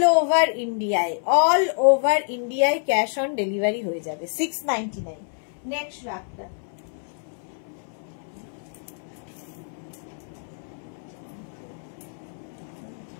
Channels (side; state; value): right; silent; 61 dB below the other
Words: ওভার ইন্ডিয়ায়। অল ওভার ইন্ডিয়ায় ক্যাশ অন ডেলিভারি হয়ে যাবে 699। নেক্সট রাখটা